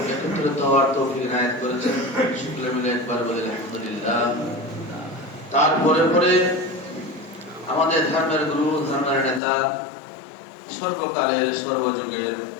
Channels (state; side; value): drops out; right; at 9.4 s